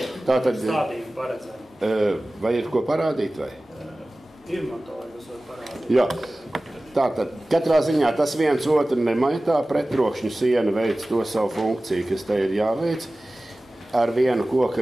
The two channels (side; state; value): both; normal; correlation 0.97